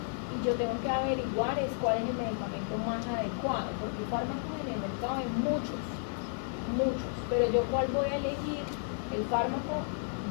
yo tengo que averiguar cuál es el medicamento más adecuado, porque fármacos en el mercado hay muchos, pero yo cuál voy a elegir, el fármaco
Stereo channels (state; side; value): silent; right; digital silence